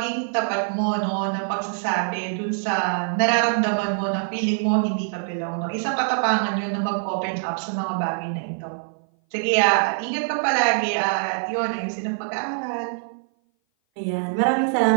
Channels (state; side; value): silent; left; 58 dB below the other